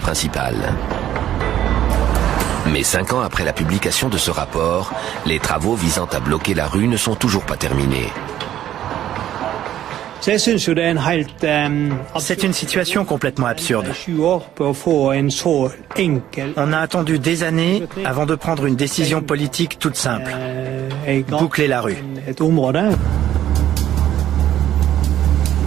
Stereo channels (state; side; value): quieter; left; 11.7 dB